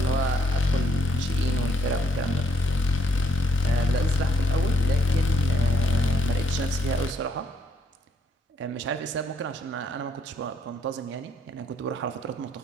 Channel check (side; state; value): both; normal; correlation 0.71